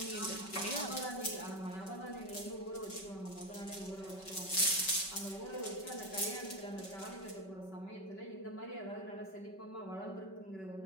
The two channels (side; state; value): right; late; 5.2 ms